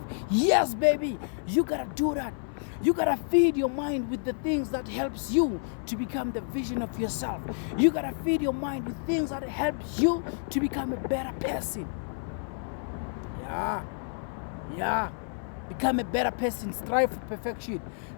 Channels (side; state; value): right; silent; 56 dB below the other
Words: Yes, baby, you gotta do that. You gotta feed your mind with the things that helps you to become the vision of yourself. You gotta feed your mind with things that helps you to become a better person. Yeah. Become a better person. Strive for perfection.